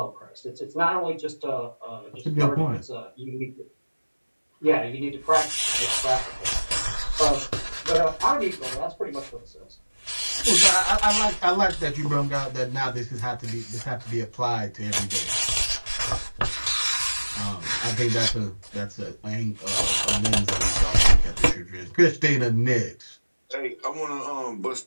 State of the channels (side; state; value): both; inverted; correlation -1.00